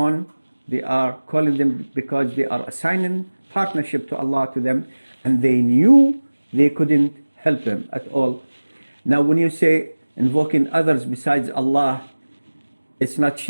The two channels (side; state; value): both; inverted; correlation -1.00